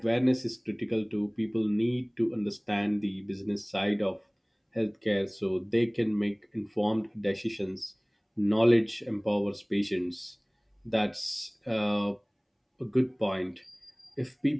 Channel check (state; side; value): identical; both; correlation 1.00